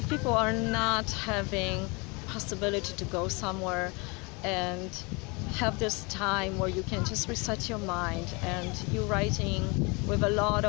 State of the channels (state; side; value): quieter; right; 28.8 dB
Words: people are not having possibility to go somewhere and have this time where you can just reset your mind, and you're writing with a lot